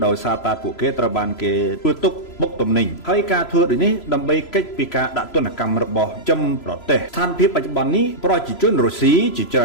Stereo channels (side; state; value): right; late; 3.0 ms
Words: ដោយសារតែពួកគេត្រូវបានគេធ្វើទុកបុកទំនិញហើយការធ្វើដូចនេះដើម្បីកិច្ចពីការដាក់ទណ្ឌកម្មរបស់ចំប្រទេសស្ថានភាពបច្ចុប្បន្ននេះប្រជាជនរុស្ស៊ីជាច្រើ